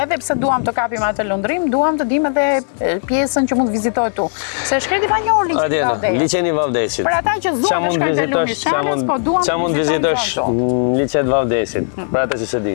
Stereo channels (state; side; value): silent; right; digital silence